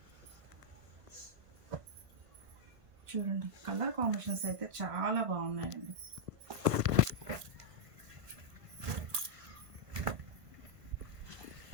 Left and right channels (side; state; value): left; late; 1.5 ms